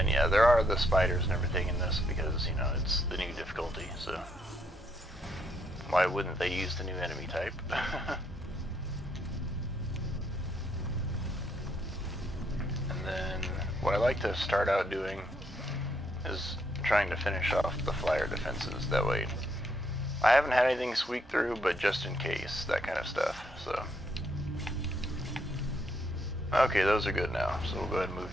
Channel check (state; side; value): normal; both; correlation 0.74